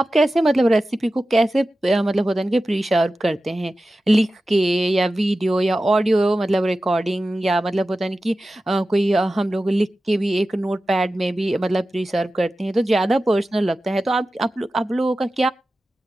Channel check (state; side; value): normal; both; correlation 0.94